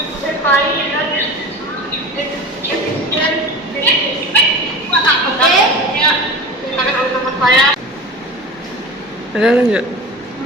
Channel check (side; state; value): both; normal; correlation 0.33